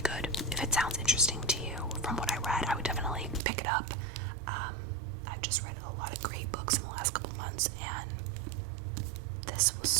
If it sounds interesting to you from what I read, I would definitely pick it up. I've just read a lot of great books in the last couple months, and this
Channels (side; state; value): left; drops out; at 3.4 s